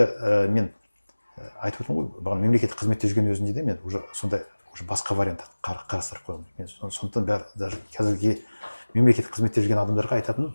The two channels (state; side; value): inverted; both; correlation -1.00